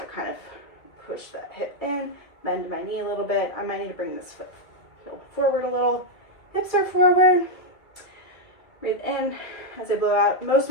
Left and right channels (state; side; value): late; right; 2.2 ms